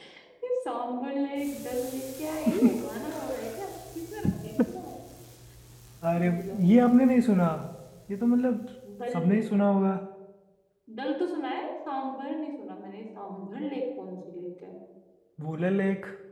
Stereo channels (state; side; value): identical; both; correlation 1.00